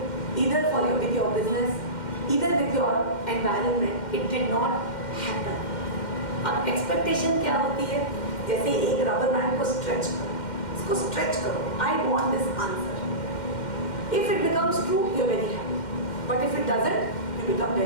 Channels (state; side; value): late; right; 2.1 ms